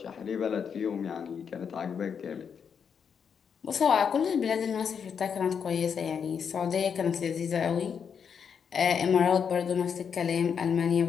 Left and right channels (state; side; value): quieter; right; 6.9 dB